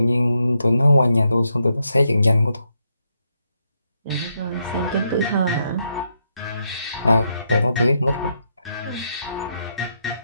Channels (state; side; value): inverted; both; correlation -0.80